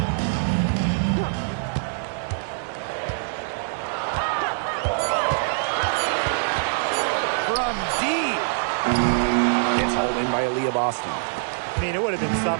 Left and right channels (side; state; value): left; silent; digital silence